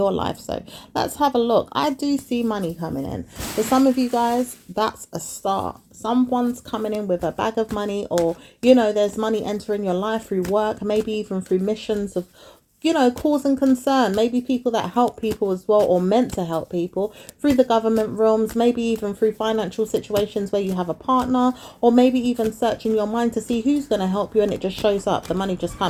life. So let's have a look. I do see money coming in. For some of you guys, that's a start. Someone's coming in with a bag of money, or there's money entering your life through work, maybe even through missions of cause and concern. Maybe people that help people as well, or meant to help people through the government realms, maybe even through financial situations where you have a partner, or maybe even searching your mind to see who's going to help you, and it just shows up. The money just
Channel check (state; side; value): identical; both; correlation 1.00